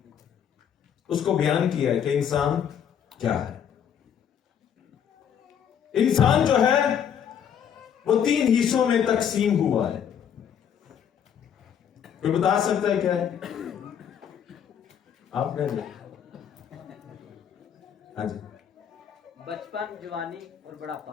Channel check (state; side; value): quieter; right; 8.5 dB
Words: उसको बयान किया है कि इंसान क्या है। इंसान जो है वो 3 हिस्सों में तकसीम हुआ है। कोई बता सकता है क्या है? आपने? हाँ जी। बचपन, जवानी और